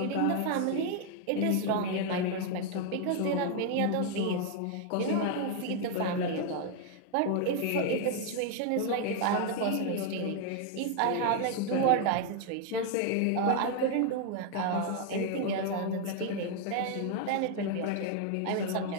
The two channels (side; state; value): both; different; correlation 0.00